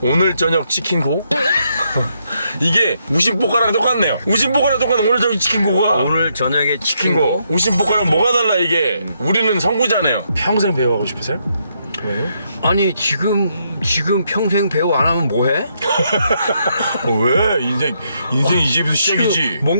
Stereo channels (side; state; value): both; inverted; correlation -0.77